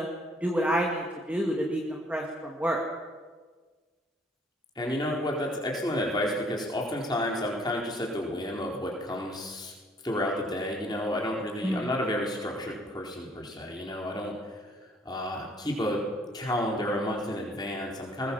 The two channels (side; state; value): both; normal; correlation 0.61